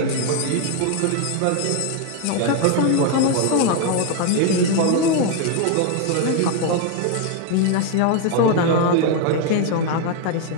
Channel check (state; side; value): different; both; correlation 0.01